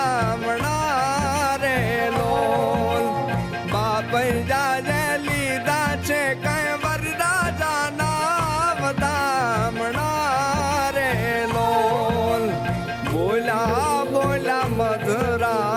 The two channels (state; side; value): identical; both; correlation 1.00